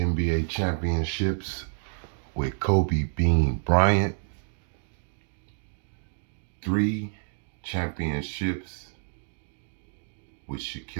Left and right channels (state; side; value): silent; left; digital silence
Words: championships with Kobe Bean Bryant, 3 championships with